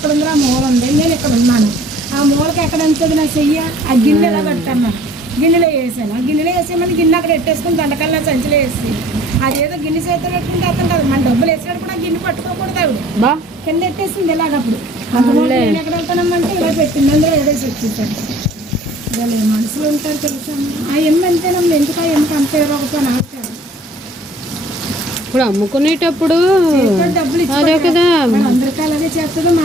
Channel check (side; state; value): both; normal; correlation 0.53